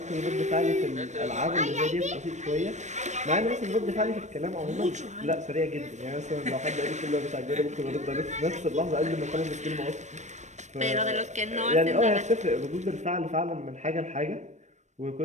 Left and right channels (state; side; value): late; left; 0.34 ms